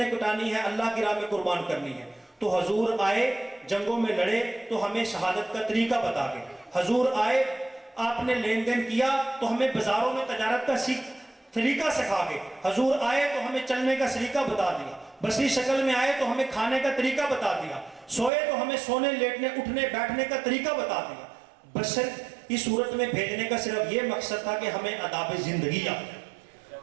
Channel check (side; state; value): left; drops out; at 18.3 s